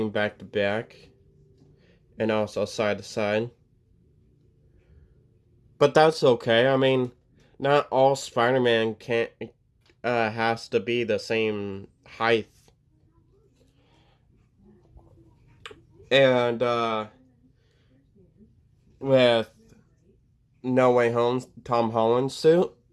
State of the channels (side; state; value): both; identical; correlation 1.00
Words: back to back, and also side to side. But that's okay. I mean, not all Spider-Man can't has to be the same height. And with No Way Home, Tom Holland suit,